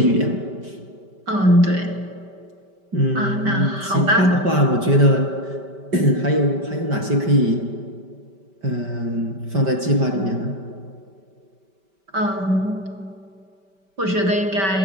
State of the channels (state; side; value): late; left; 5.1 ms